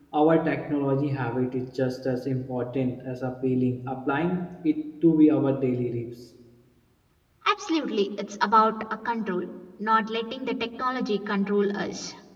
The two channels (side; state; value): both; identical; correlation 1.00